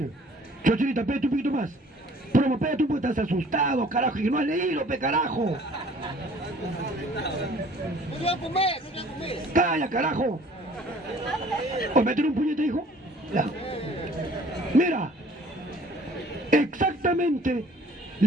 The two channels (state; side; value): normal; both; correlation 0.53